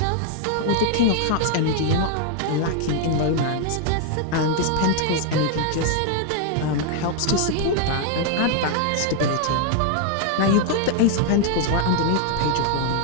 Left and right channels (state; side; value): different; both; correlation 0.00